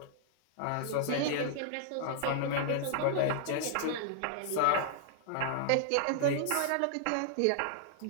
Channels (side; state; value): both; different; correlation -0.01